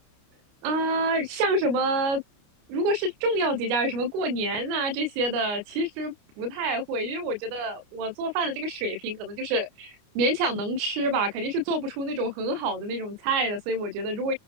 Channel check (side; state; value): left; late; 29 ms